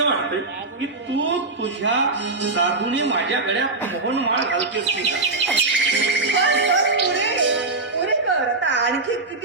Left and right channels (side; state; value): left; quieter; 3.4 dB